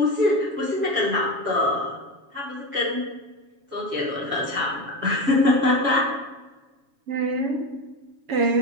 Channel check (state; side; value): late; left; 7.2 ms